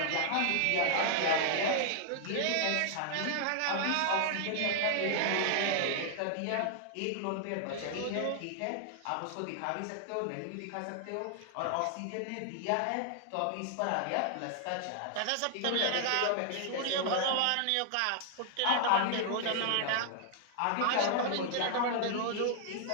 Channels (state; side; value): different; both; correlation 0.00